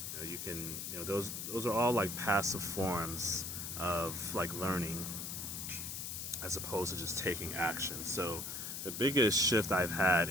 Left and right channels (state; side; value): noise; left; hiss, 5 dB below the sound